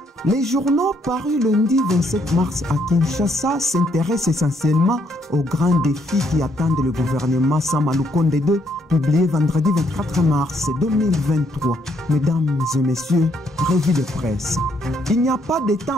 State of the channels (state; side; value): normal; both; correlation 0.72